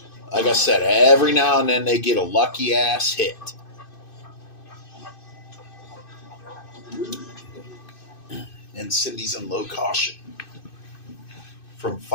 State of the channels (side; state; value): right; late; 2.6 ms